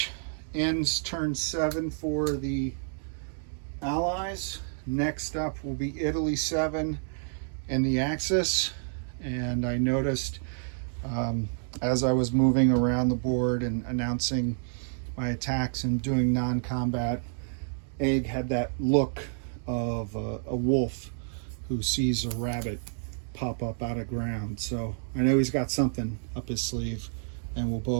ends turn 7 for the Allies. Next up will be Italy 7 and the Axis. And I noticed as I was moving around the board and announcing my attacks and doing non-combat, Egg had that look of a wolf who sees a rabbit pop up out of ground. So I know he's got something up his sleeve, and we'll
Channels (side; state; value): left; silent; digital silence